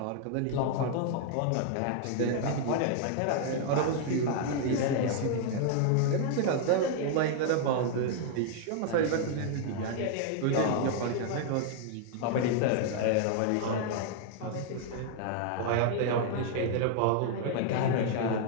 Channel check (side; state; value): both; different; correlation 0.00